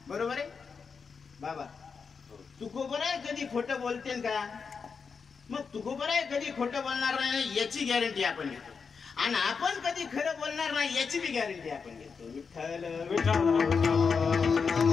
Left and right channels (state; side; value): quieter; right; 5.5 dB